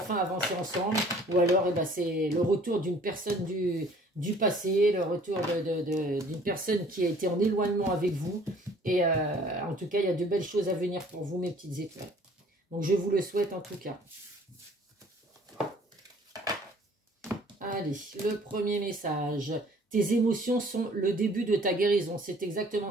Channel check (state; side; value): normal; both; correlation 0.54